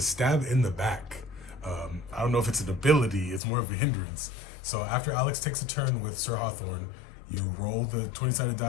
stab in the back. I don't know if it's an ability, it's more of a hindrance. So after Alex takes a turn with Sir Hawthorne, you roll the 20-sided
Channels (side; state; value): right; drops out; at 3.4 s